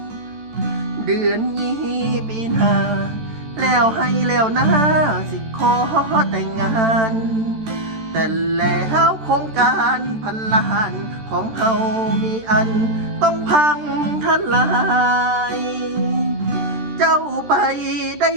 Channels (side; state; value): left; late; 13 ms